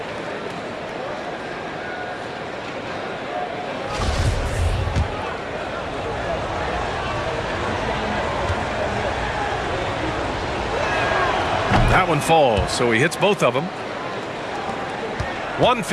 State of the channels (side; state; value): both; identical; correlation 1.00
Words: That one falls, so he hits both of them.